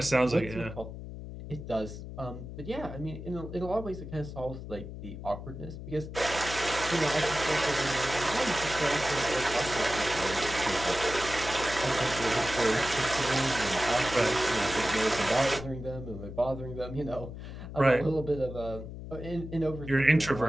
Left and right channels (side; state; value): left; noise; hum, 10 dB below the sound